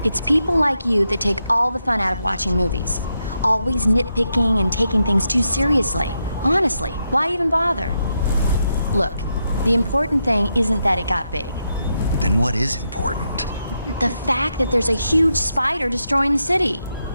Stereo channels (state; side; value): inverted; both; correlation -0.83